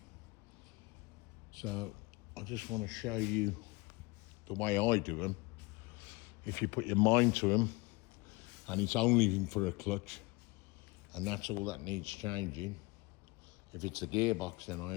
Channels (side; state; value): right; quieter; 24.7 dB